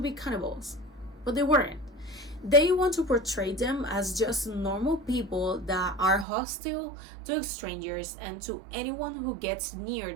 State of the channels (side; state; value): left; drops out; at 6.2 s